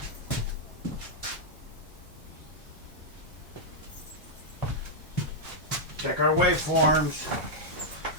Check our waveforms.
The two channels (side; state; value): both; normal; correlation -0.06